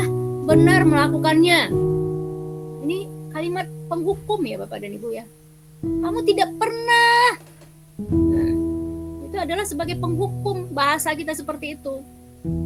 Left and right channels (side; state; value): both; identical; correlation 1.00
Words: benar melakukannya. Ini kalimat penghukum ya Bapak dan Ibu ya. Kamu tidak pernah. Nah, itu adalah sebagai penghukum, bahasa kita seperti itu.